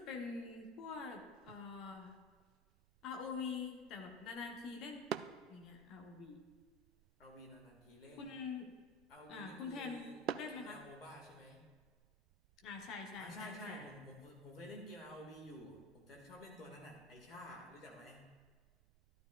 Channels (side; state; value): right; noise; rumble, 24 dB below the sound